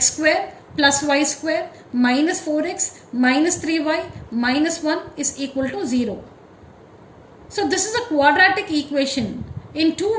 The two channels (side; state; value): both; identical; correlation 1.00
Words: square plus y square minus 4x minus 3y minus 1 is equal to 0. So this is a quadratic equation in